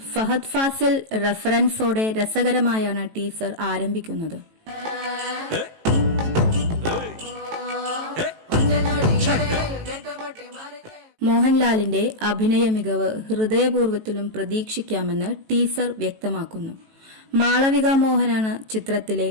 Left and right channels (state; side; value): late; left; 18 ms